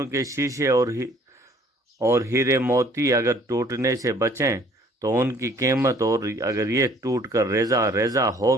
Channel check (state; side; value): normal; both; correlation 0.57